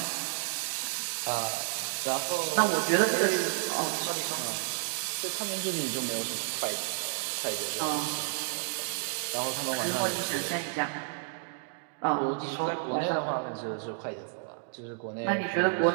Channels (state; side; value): silent; left; digital silence